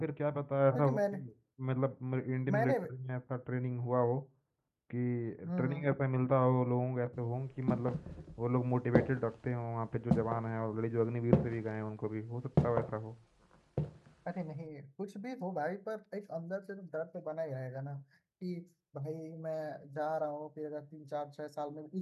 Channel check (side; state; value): both; identical; correlation 1.00